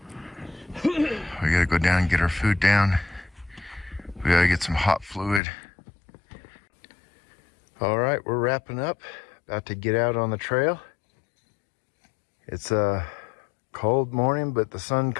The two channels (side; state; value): right; drops out; at 5.4 s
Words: We gotta go down and get our food down. We gotta get some hot fluid. All right, we're wrapping up. About to get out on the trail. It's a cold morning, but the sun